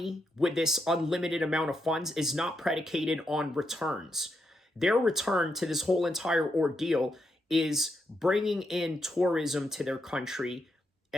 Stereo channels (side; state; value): both; normal; correlation 0.81